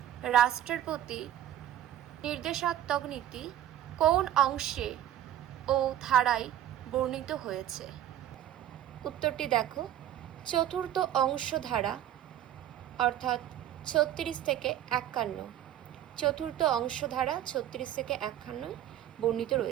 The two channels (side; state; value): left; quieter; 11.7 dB